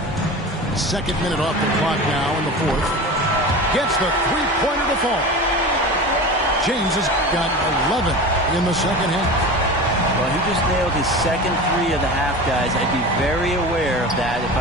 Second minute off the clock now in the fourth. Gets the three-pointer to fall. James has got 11 in the second half. Well, he just nailed his second three of the half, guys. I'd be very aware of that if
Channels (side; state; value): both; normal; correlation 0.31